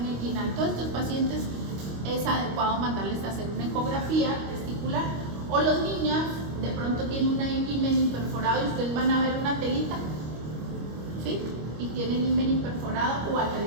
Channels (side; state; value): left; late; 25 ms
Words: inguinal. Todos estos pacientes es adecuado mandarles a hacer una ecografía testicular. O los niños de pronto tienen un himen imperforado y ustedes van a ver una telita, ¿sí? Y tienen himen imperforado o